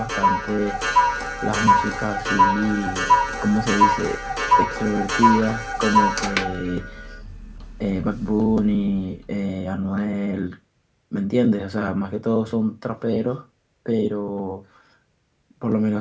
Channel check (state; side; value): identical; both; correlation 1.00